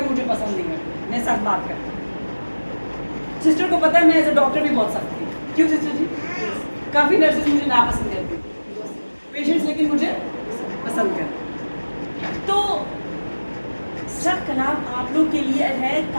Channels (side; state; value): both; inverted; correlation -1.00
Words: مجھے پسند نہیں کرتے, میں سخت بات کرتا ہوں. सिस्टर को पता है मैं एज अ डॉक्टर भी बोल सकती हूँ, क्यों सिस्टर जी? काफ़ी नर्सेज मुझे नापसंद करती हैं, पेशेंट्स लेकिन मुझे पसंद करते। तो सब कलाम आप लोग के लिए है